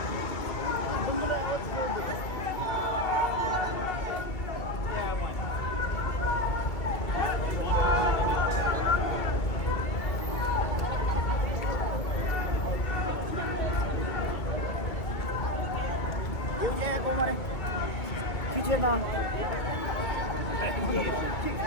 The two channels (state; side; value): late; right; 2.3 ms